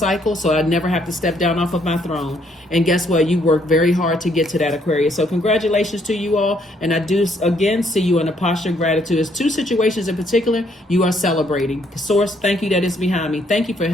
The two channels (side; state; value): both; normal; correlation 0.69